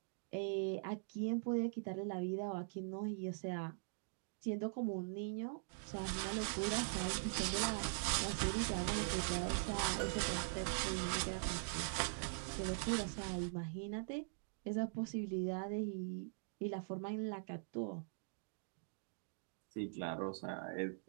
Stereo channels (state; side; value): silent; left; digital silence